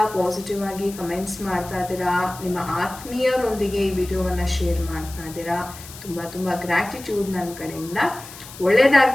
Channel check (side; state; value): left; noise; hiss, 16 dB below the sound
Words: ಪಾಸಿಟಿವ್ ಆಗಿ ಕಮೆಂಟ್ಸ್ ಮಾಡ್ತಾ ಇದ್ದೀರಾ, ನಿಮ್ಮ ಆತ್ಮೀಯರೊಂದಿಗೆ ಈ ವಿಡಿಯೋವನ್ನು ಶೇರ್ ಮಾಡ್ತಾ ಇದ್ದೀರಾ. ತುಂಬ ಗ್ರ್ಯಾಟಿಟ್ಯೂಡ್ ನನ್ನ ಕಡೆಯಿಂದ.